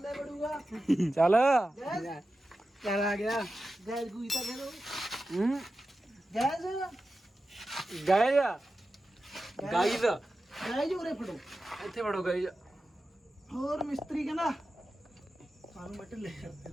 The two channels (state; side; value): normal; both; correlation 0.93